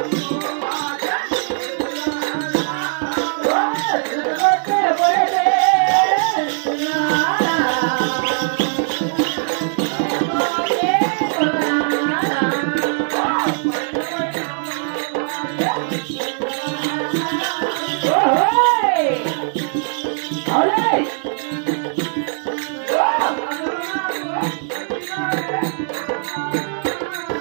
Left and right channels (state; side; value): silent; left; 66 dB below the other